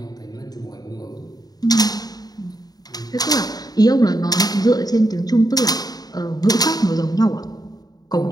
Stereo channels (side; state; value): right; late; 0.19 ms